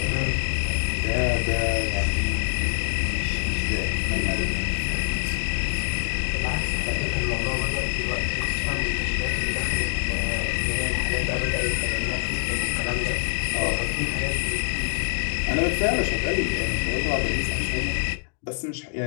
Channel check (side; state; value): right; silent; digital silence